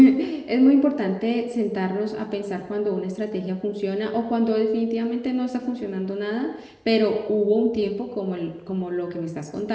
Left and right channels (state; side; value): identical; both; correlation 1.00